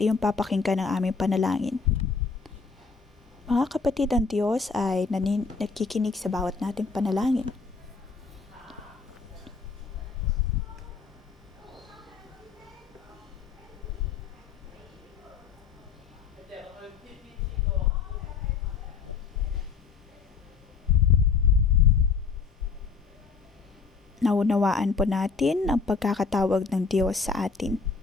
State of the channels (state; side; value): quieter; right; 5.1 dB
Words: papakinggan ang aming panalangin. Mga kapatid, ang Diyos ay nakikinig sa bawat nating panalangin. Naunawaan po natin ang pagkakatawag ng Diyos sa atin.